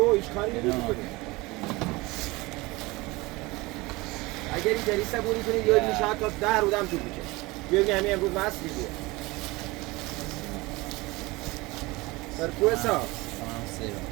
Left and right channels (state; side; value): quieter; left; 22.5 dB